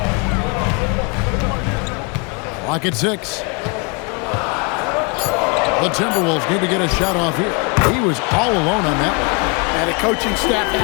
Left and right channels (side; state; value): right; quieter; 32.2 dB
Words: Clock at 6. The Timberwolves need to get a shot off here. He was all alone on that one. And the coaching staff